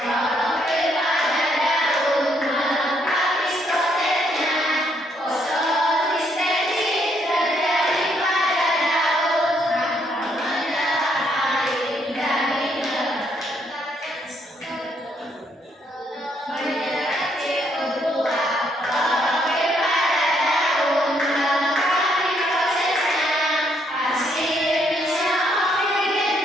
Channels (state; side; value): normal; both; correlation 0.72